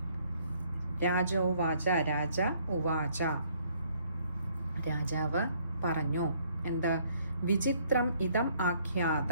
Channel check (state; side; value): inverted; both; correlation -0.64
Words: രാജോവാച, രാജ ഉവാച, രാജാവ് പറഞ്ഞു. എന്ത്? വിചിത്രം ഇതം